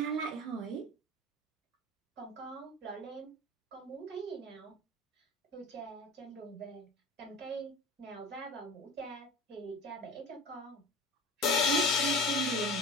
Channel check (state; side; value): normal; both; correlation 0.37